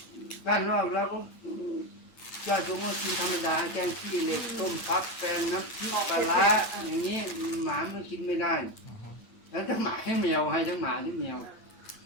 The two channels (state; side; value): late; right; 8.9 ms